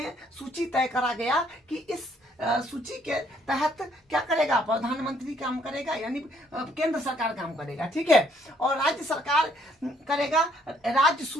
सूची तय करा गया कि इस सूची के तहत क्या करेगा, प्रधानमंत्री काम करेगा, यानी केंद्र सरकार काम करेगा, ठीक है। और राज्य सरकार करेगा राज्य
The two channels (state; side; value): normal; both; correlation 0.66